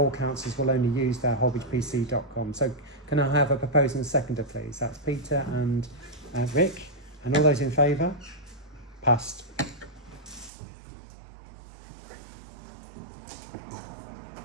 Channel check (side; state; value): left; drops out; at 10.5 s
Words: councillors will only use their holbeachpc.com. So can I have a proposer and a seconder, please? That's Peter and Rick. And all those in favour? Passed.